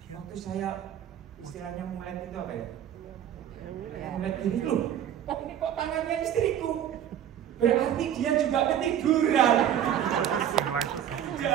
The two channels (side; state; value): left; quieter; 10.2 dB